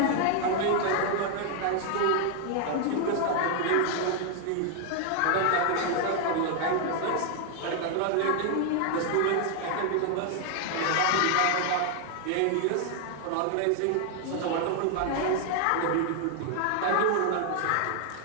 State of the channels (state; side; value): different; both; correlation 0.00